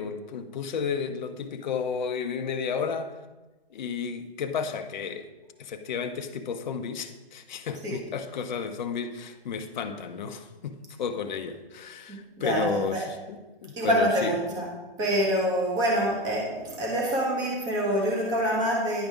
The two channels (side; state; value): both; normal; correlation 0.23